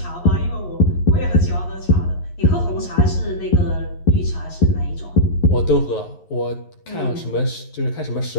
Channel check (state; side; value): late; right; 11 ms